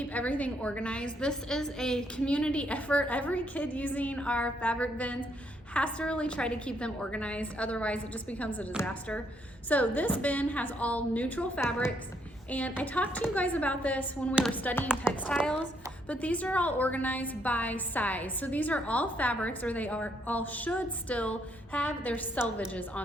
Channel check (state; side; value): normal; both; correlation 0.72